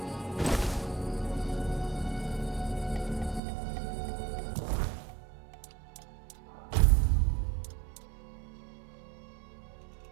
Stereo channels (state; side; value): drops out; left; at 3.4 s